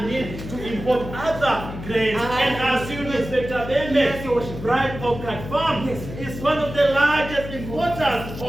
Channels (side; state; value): left; noise; hum, 10 dB below the sound